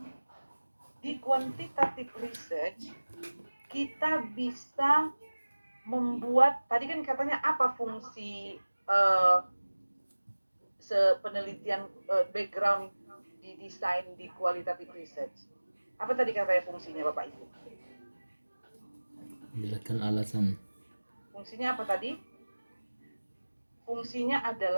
di quantitative research kita bisa membuat, tadi kan katanya apa fungsi penelitian background di desain di qualitative research. Apa tadi katanya fungsinya Bapak Ibu? Menjelaskan alasan. Fungsinya apa tadi? Fungsinya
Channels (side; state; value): both; inverted; correlation -1.00